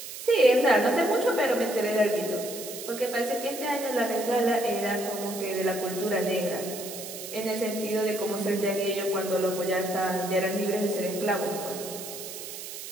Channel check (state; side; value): noise; right; hiss, 10 dB below the sound